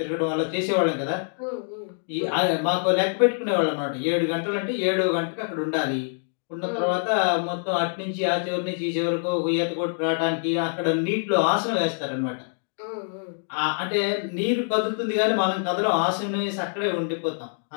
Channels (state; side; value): silent; right; digital silence